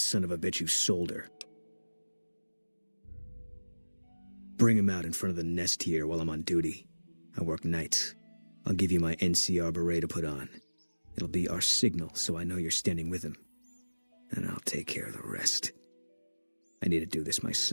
of a bitch who sold her. Bring him out in front of the nest here while I'm on duty. I work nights. I'll give you my NCR beret to put on. It'll be our signal so I know you're standing with him. And I'll take care of the rest. I need to do this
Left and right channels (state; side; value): inverted; both; correlation -1.00